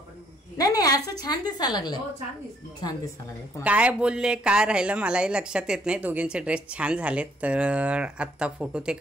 नाही नाही, असं छान दिसायला लागलं. छान दिसायला लागलं. काय बोलले काय राहिलं मलाही लक्षात येत नाही. दोघींचे ड्रेस छान झालेत. तर आत्ता फोटो ते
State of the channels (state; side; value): normal; both; correlation 0.67